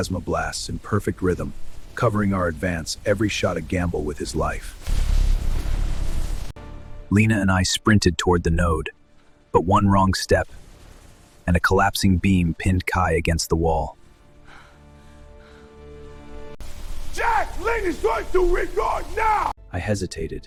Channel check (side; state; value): both; identical; correlation 1.00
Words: blasts in perfect rhythm, covering our advance, every shot a gamble with his life. Lena and I sprinted toward the node, but one wrong step, and a collapsing beam pinned Kai against the wall. Jack! Lena's going to regard now! I